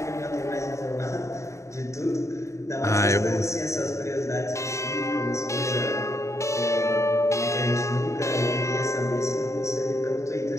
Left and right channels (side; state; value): right; late; 0.14 ms